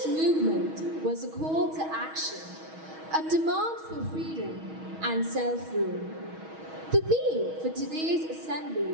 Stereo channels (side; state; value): left; late; 6.3 ms